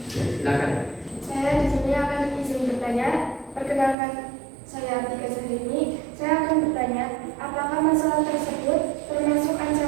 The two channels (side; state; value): left; drops out; at 4.0 s